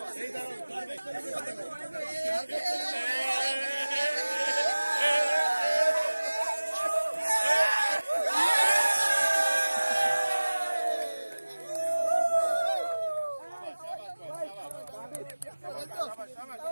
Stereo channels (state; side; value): inverted; both; correlation -1.00